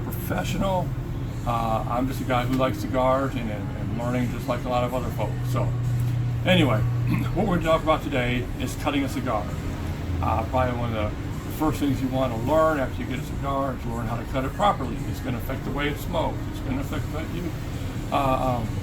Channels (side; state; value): both; identical; correlation 1.00